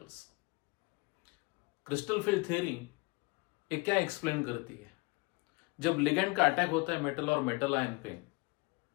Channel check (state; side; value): quieter; right; 26.7 dB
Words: Crystal field theory ये क्या explain करती है? जब ligand का attack होता है metal और metal ion पे,